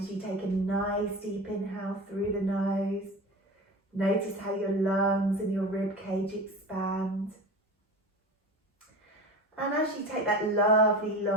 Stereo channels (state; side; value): normal; both; correlation 0.31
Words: you take a nice deep inhale through the nose. Notice how your lungs and your rib cage expand. And as you take that lovely,